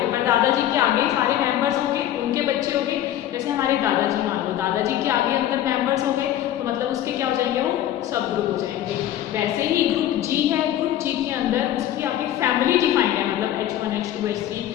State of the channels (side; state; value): right; quieter; 12.2 dB